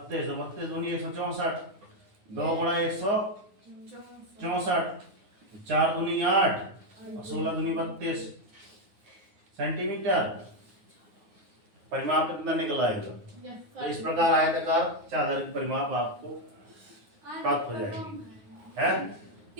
32 दूनी 164, 2 गुणा 164, 4 दूनी 8 और 16 दूनी 32 सेंटीमीटर। परिमाप कितना निकल आएगा। तो इस प्रकार आयताकार चादर की परिमाप आपको प्राप्त हो जाएगी। है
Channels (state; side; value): late; left; 9.6 ms